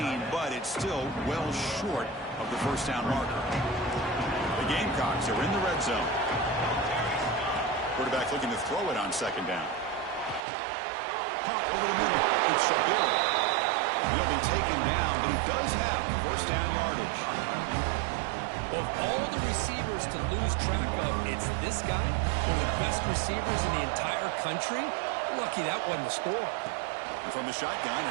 but it's still well short of the first down marker. The Gamecocks are in the red zone. Quarterback looking to throw it on second down. Pump over the middle. It's Shabira. He'll be taken down, but he does have first down yardage. Of all the receivers to lose track of, it's this guy, one of the best receivers in the entire country. Lucky that wasn't a score. And from the shotgun,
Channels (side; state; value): left; drops out; at 10.5 s